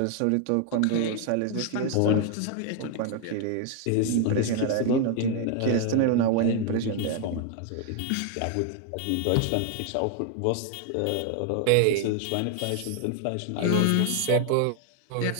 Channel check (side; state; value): both; different; correlation 0.00